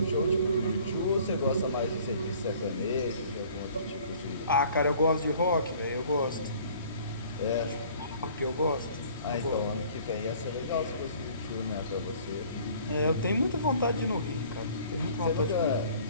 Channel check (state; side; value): inverted; both; correlation -0.53